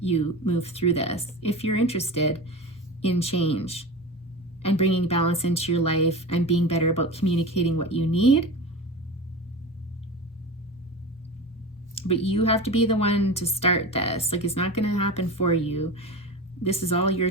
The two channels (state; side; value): normal; both; correlation 0.28